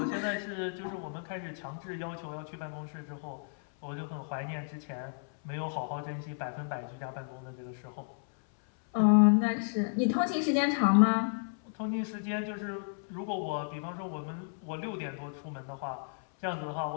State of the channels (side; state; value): right; silent; 56 dB below the other